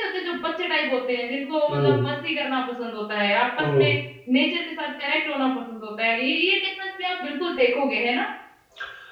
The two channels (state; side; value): identical; both; correlation 1.00